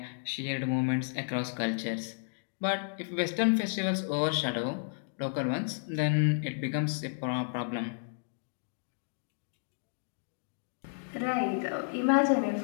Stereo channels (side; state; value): right; silent; digital silence